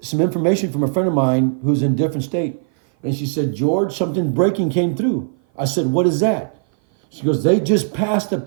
some information from a friend of mine who's in a different state. And she said, George, something breaking came through. I said, what is that? She goes, they just passed a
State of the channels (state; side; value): silent; left; 56 dB below the other